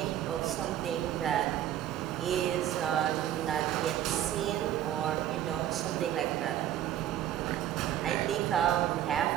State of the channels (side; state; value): left; quieter; 11.7 dB